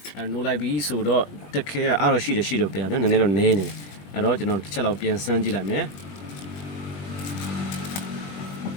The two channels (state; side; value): late; right; 21 ms